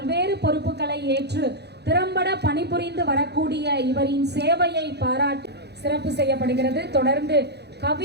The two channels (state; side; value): late; left; 0.48 ms